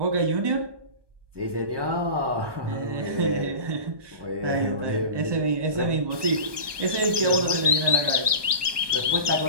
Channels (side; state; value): left; late; 1.2 ms